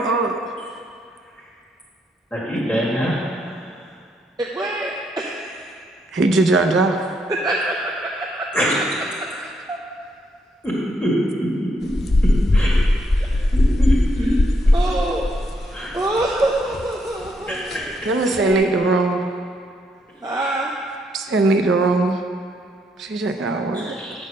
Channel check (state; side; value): normal; both; correlation 0.75